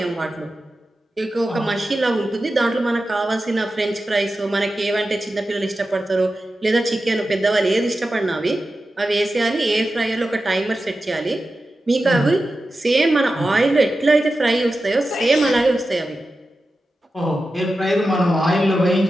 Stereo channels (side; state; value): both; normal; correlation 0.92